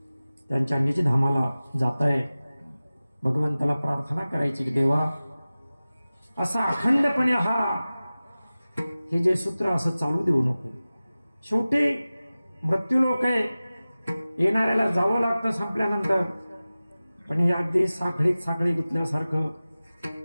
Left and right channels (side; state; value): both; inverted; correlation -0.97